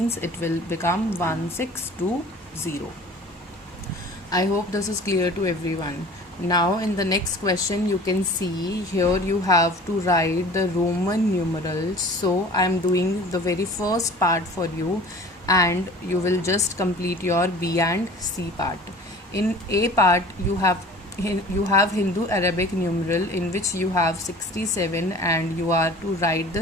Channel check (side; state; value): both; normal; correlation 0.44